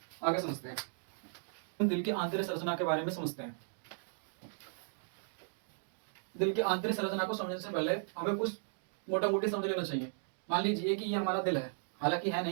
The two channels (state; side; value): silent; left; digital silence